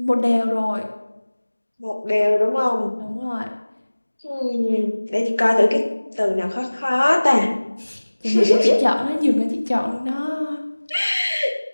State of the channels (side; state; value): both; inverted; correlation -1.00